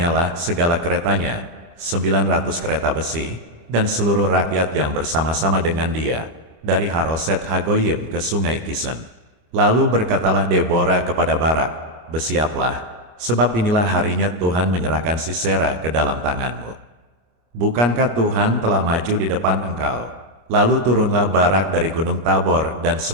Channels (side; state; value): left; late; 25 ms